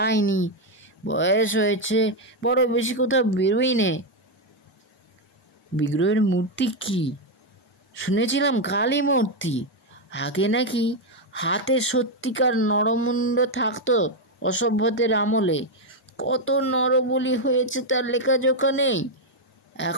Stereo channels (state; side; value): normal; both; correlation 0.03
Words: বয়স হয়েছে, বড় বেশি কোথাও বেরোই নেই। বিগ্রহের মূর্তি কি? শুনেছিলাম কালী মূর্তি। আগে নাকি হাতে সত্যিকার নরমুণ্ড থাকতো অসভ্যদের আমলে। কত নরবলি হয়েছে তার লেখাজোখা নেই।